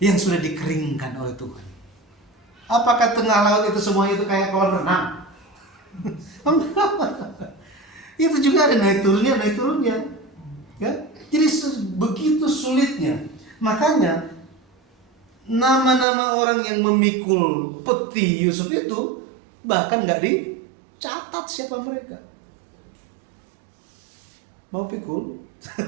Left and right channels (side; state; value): left; drops out; at 16.1 s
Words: yang sudah dikeringkan oleh Tuhan. Apakah tengah laut itu semuanya itu kayak kolam renang? Itu juga ada naik turunnya. Ya? Jadi begitu sulitnya. Makanya nama-nama orang yang memikul peti Yusuf itu bahkan nggak dicatat siapa mereka. Mau pikul?